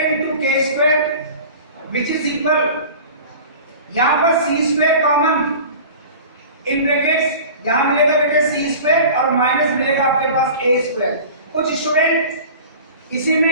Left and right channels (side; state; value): both; inverted; correlation -0.39